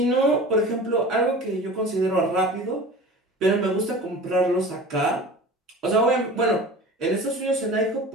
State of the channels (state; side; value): normal; both; correlation 0.38